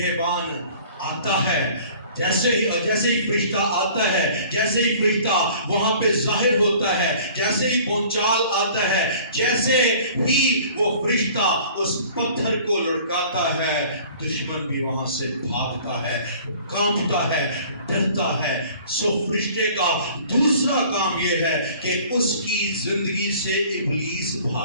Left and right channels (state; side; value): inverted; both; correlation -0.49